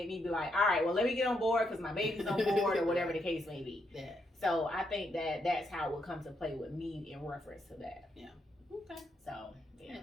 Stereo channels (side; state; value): both; normal; correlation 0.79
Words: me be like, all right, well, let me get on board because my baby's on board or whatever the case may be. So I think that's how it would come to play with me in reference to that. Okay. So